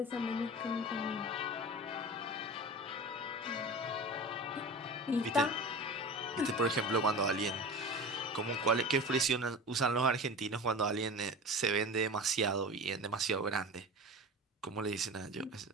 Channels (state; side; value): normal; both; correlation 0.33